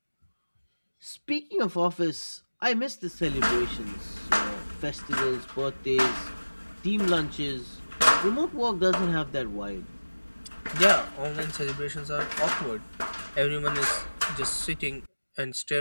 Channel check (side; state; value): both; inverted; correlation -1.00